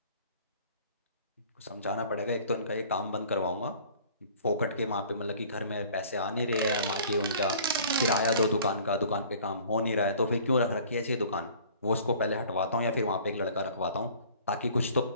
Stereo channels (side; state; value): both; inverted; correlation -0.50